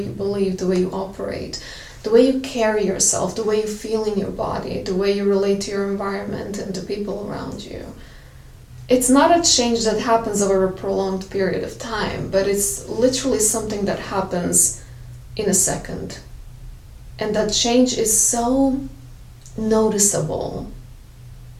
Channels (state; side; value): identical; both; correlation 1.00